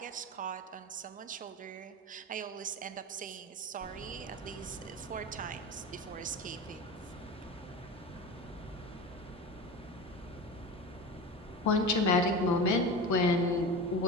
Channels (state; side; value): normal; both; correlation 0.29